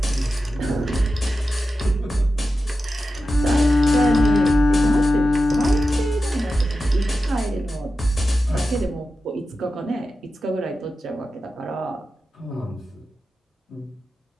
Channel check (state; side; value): normal; both; correlation 0.92